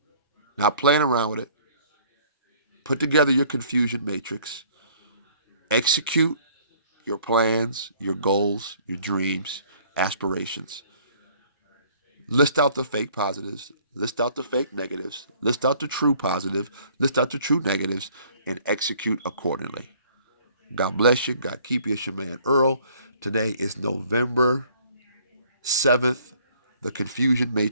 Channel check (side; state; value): both; inverted; correlation -0.57